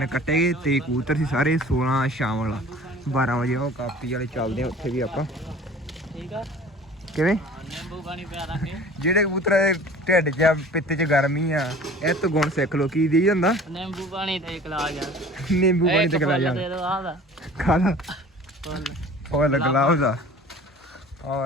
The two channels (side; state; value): both; normal; correlation 0.45